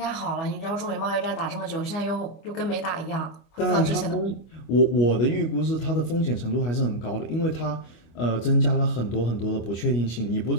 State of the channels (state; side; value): late; right; 25 ms